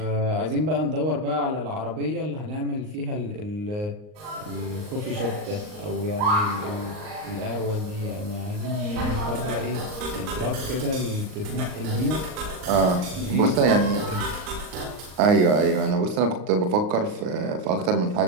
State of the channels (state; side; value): late; left; 39 ms